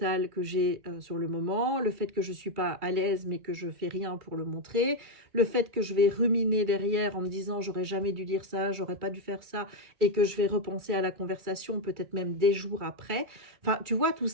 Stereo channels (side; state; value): left; late; 2.3 ms